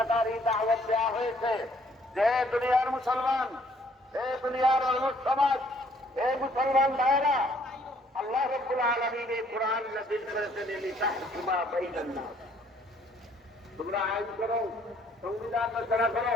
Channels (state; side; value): normal; both; correlation 0.63